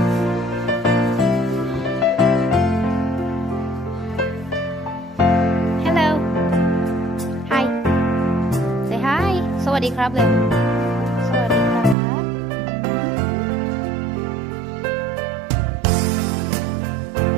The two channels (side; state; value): left; drops out; at 12.0 s